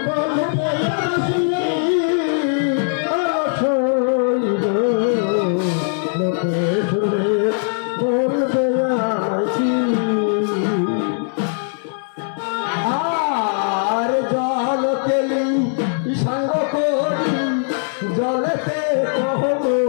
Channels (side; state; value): right; silent; digital silence